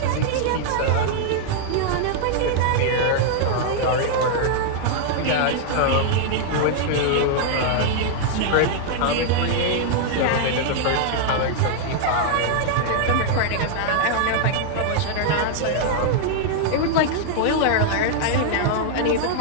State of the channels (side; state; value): both; different; correlation -0.01